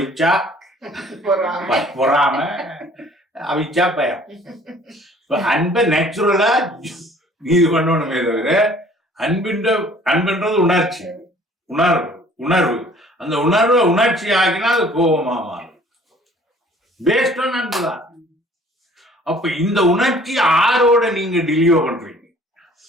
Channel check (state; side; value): normal; both; correlation 0.54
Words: பொறாம, அவிச்சா பயம். அன்பை நேச்சுரலா இது பண்ணணுமே தவிர அன்புன்றது உணர்ச்சி, உணர்வு. அந்த உணர்வை உணர்ச்சி ஆகினா அது கோபமா மாறும். பேஸ்ட் ஆன் அன்புதான். அப்ப இந்த உணர்ச்சி ஆரோட நீங்க டெலிவோ பண்றீங்க,